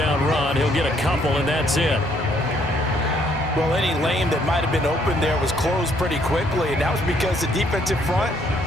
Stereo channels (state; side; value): normal; both; correlation 0.67